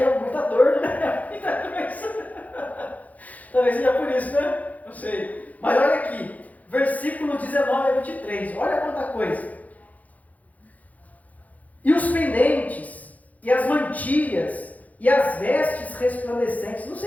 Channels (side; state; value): right; late; 0.076 ms